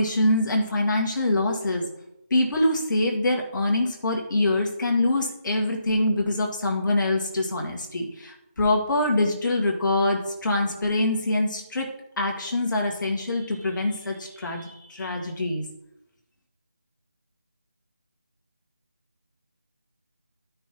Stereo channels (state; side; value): inverted; both; correlation -0.76